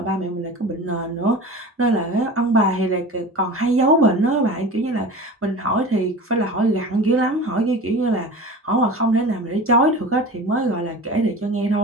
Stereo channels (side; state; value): both; normal; correlation 0.34